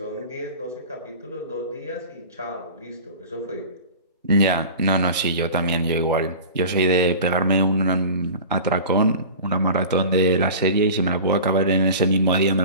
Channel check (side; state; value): both; inverted; correlation -0.35